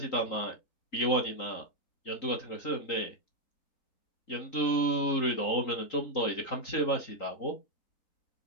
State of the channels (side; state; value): right; late; 3.8 ms